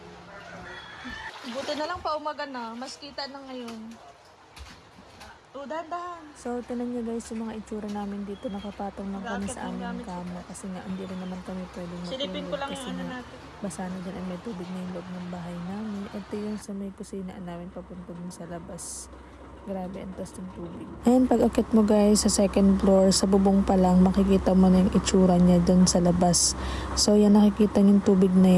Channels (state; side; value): identical; both; correlation 1.00